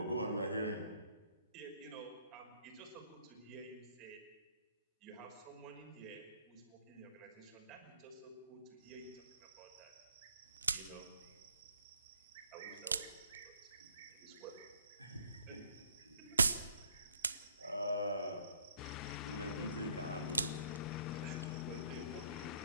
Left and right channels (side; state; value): both; inverted; correlation -0.64